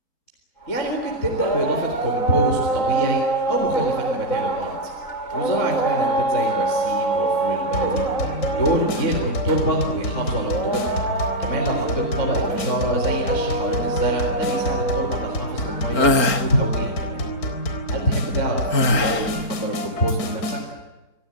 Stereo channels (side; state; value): right; late; 4.4 ms